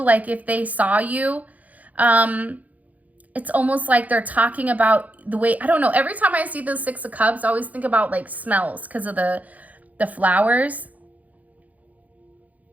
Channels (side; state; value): left; late; 0.076 ms